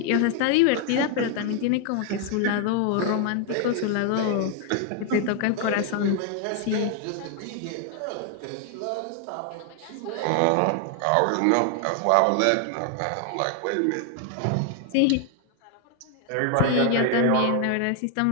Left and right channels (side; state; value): both; different; correlation 0.00